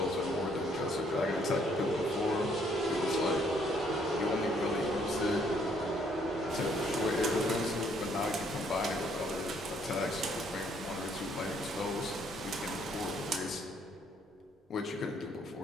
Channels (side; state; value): both; normal; correlation 0.66